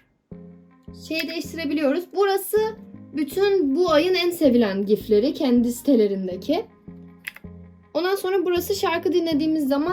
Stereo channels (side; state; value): both; identical; correlation 1.00